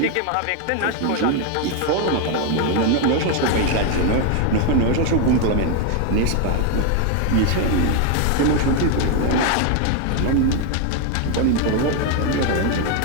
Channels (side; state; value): both; different; correlation 0.01